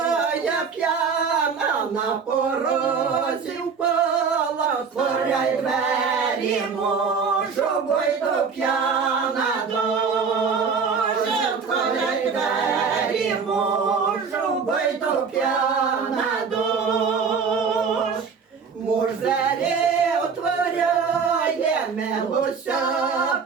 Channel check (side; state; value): left; quieter; 5.7 dB